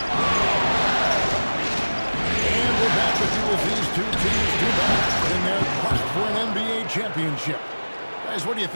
And we're back with you as these two teams do battle in their quest for an NBA championship. Guys, what do you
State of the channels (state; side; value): inverted; both; correlation -1.00